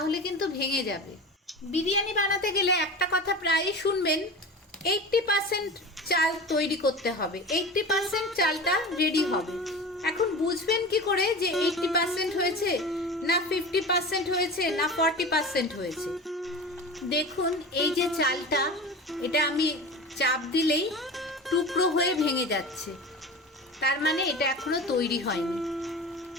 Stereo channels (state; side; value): normal; both; correlation 0.31